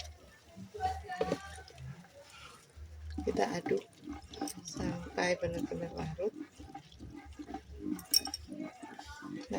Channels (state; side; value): identical; both; correlation 1.00